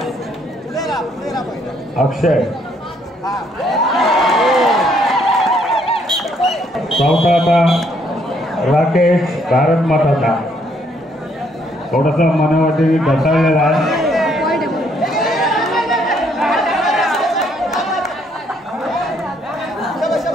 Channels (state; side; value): normal; both; correlation 0.68